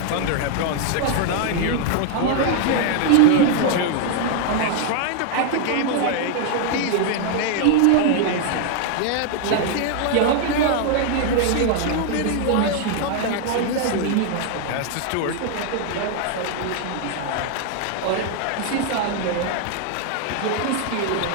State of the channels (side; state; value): both; different; correlation 0.00